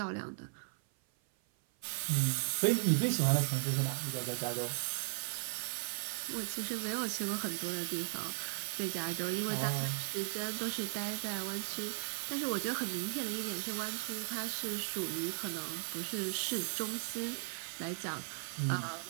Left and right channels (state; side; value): silent; left; 53 dB below the other